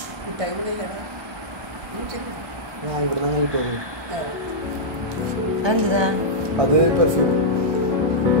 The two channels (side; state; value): left; late; 1.3 ms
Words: ഇവിടെ നിന്ന് കിട്ടുമോ? എന്താ അത് പെർഫ്യൂം